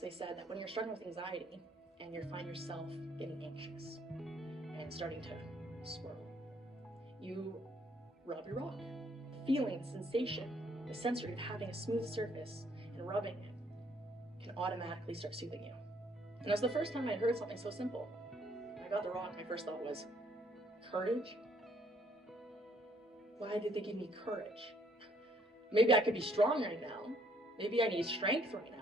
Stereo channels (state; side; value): normal; both; correlation 0.66